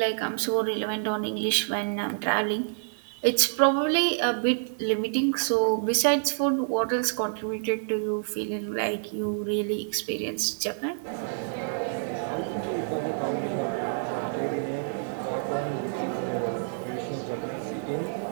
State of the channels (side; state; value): left; silent; digital silence